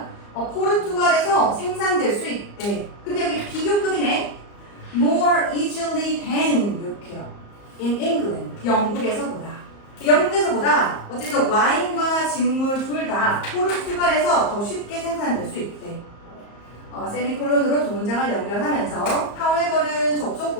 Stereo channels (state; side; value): late; right; 34 ms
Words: 포르투갈에서 생산될 수 있대. 근데 여기 비교급이네. more easily than 이렇게요. in England. 영국에서보다. 영국에서보다 어쨌든 와인과 직물 둘 다 포르투갈에서 더 쉽게 생산될 수 있대. 세미콜론으로 두 문장을 연결하면서 however는 접속